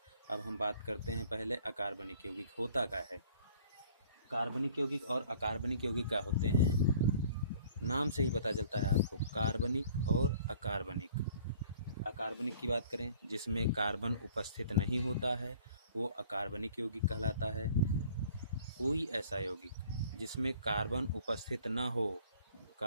अब हम बात करते हैं पहले अकार्बनिक यौगिक होता क्या है। कार्बनिक यौगिक और अकार्बनिक यौगिक क्या होते हैं, नाम से ही पता चलता है आपको, कार्बनिक और अकार्बनिक। अकार्बनिक की बात करें, जिसमें कार्बन उपस्थित नहीं होता है, वो अकार्बनिक यौगिक कहलाता है। कोई ऐसा यौगिक जिसमें कार्बन उपस्थित ना हो,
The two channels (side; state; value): both; inverted; correlation -0.53